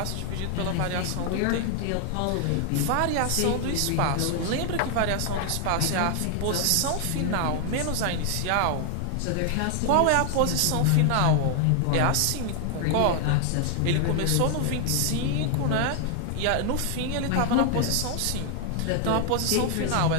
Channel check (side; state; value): both; different; correlation 0.00